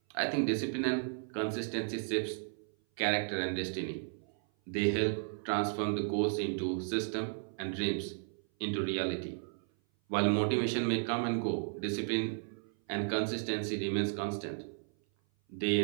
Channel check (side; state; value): left; silent; 55 dB below the other